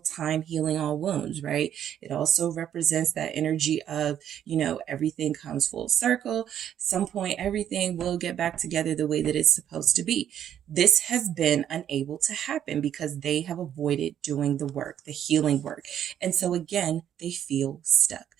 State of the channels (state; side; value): quieter; left; 10.0 dB